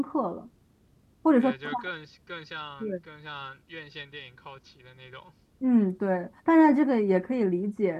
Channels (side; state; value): both; identical; correlation 1.00